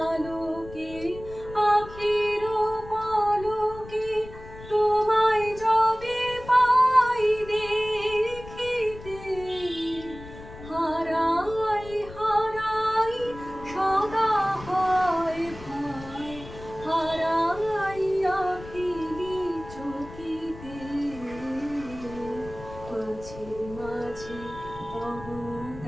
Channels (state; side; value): noise; left; rumble, 15 dB below the sound